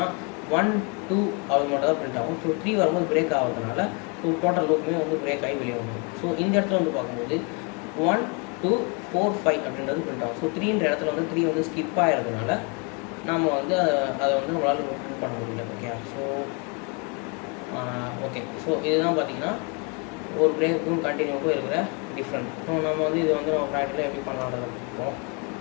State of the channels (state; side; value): quieter; right; 33.4 dB